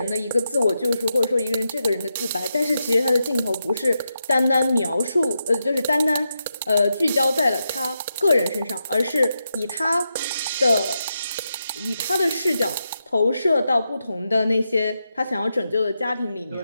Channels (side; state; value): both; inverted; correlation -0.86